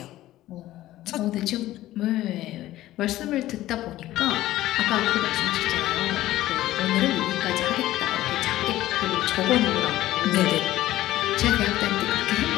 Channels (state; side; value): quieter; right; 15.1 dB